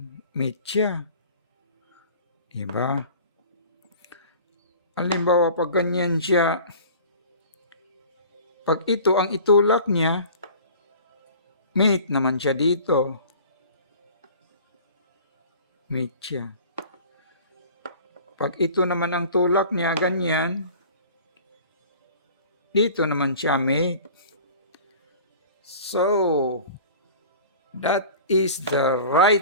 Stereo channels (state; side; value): inverted; both; correlation -0.43